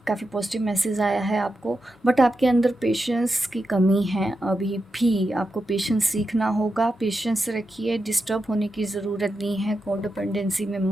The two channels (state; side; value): normal; both; correlation 0.88